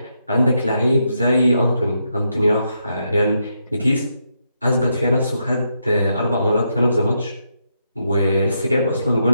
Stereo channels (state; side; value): inverted; both; correlation -0.81